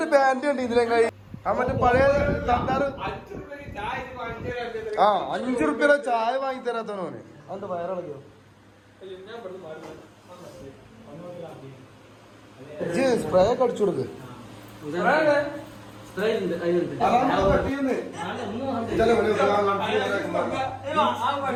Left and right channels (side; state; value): both; identical; correlation 1.00